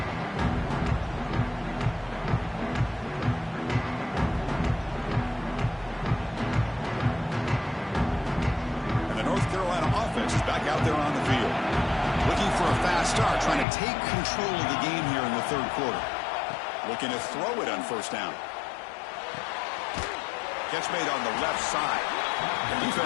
Out there on the field. Looking for a fast start, trying to take control of the game here in the 3rd quarter. Looking to throw it on first down. Catch made on the left side. The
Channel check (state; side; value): drops out; right; at 13.7 s